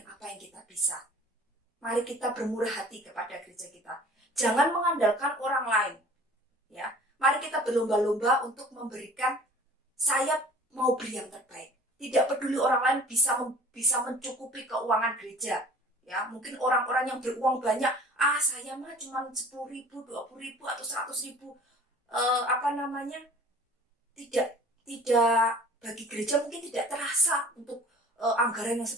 apa yang kita bisa. Mari kita bermurah hati kepada gereja kita. Jangan mengandalkan orang lain, ya. Mari kita berlomba-lomba untuk memberikan, saya mau beri yang terbaik. Tidak peduli orang lain bisa mencukupi keuangan gereja, ya. Mungkin orang-orang yang beruang banyak, saya mah cuma 10.000, 20.000 atau 100.000, tidak bagi gereja mungkin tidak terasa untuk anggaran yang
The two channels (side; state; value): both; normal; correlation 0.46